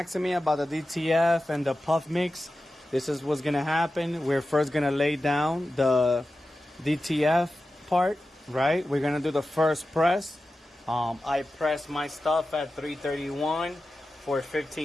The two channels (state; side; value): normal; both; correlation 0.93